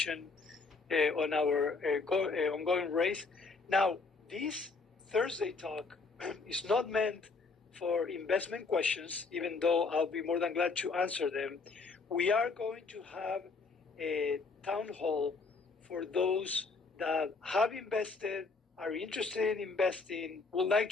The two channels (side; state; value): right; quieter; 4.2 dB